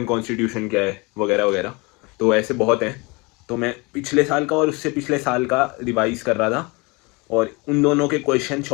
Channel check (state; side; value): quieter; right; 26.9 dB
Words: कॉन्स्टिट्यूशन क्या है, वगैरह वगैरह। तो ऐसे बहुत हैं, तो मैं पिछले साल का और उससे पिछले साल का रिवाइज कर रहा था, और उन दोनों के क्वेश्चन